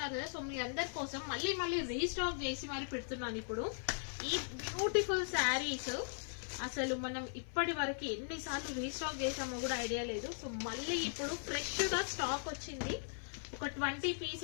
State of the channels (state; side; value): silent; right; 52 dB below the other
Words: కదా. సో మీ అందరి కోసం మళ్ళీ రీస్టాక్ చేసి మరి పెడుతున్నాను ఇప్పుడు ఈ బ్యూటిఫుల్ శారీస్. అసలు మనం ఇప్పటి వరకు ఎన్నిసార్లు రీస్టాక్ చేసామో కూడా ఐడియా లేదు. సో మళ్ళీ ఇప్పుడు ఫ్రెష్ గా స్టాక్ వచ్చింది. ఒక 20